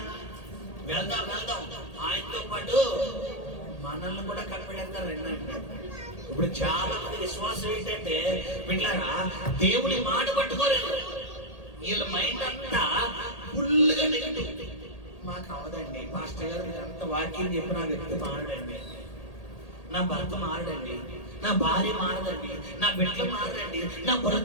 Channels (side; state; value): right; late; 1.8 ms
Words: వెళ్దాం వెళ్దాం, ఆయనతో పాటు మనల్ని కూడా కనిపెడతారు అన్నాడు. ఇప్పుడు చాలా మంది విశ్వాసం ఏంటంటే పిల్లరా, దేవుని మాట పట్టుకోలేదు, వీళ్ళ మైండ్ అంతా ఫుల్ గా నెగటివ్. మాకు అవదండి పాస్టర్ గారు అంత వాక్యం చెప్పి నా వ్యక్తి మారడండి, నా భర్త మారడండి, నా భార్య మారదండి, నా బిడ్డలు మారదండి, నా